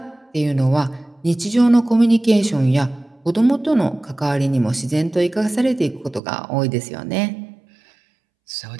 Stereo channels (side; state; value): left; drops out; at 6.2 s